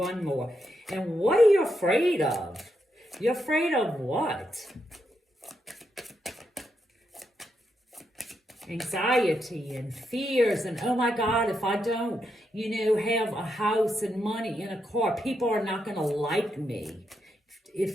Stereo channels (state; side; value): normal; both; correlation 0.82